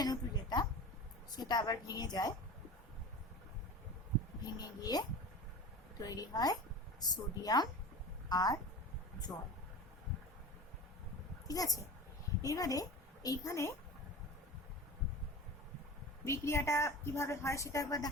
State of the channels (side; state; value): both; normal; correlation 0.33